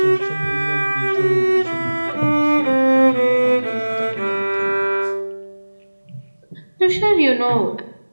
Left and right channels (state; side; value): inverted; both; correlation -1.00